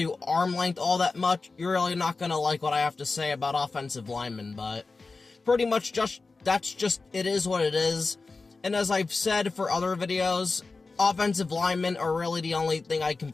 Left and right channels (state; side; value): quieter; right; 3.9 dB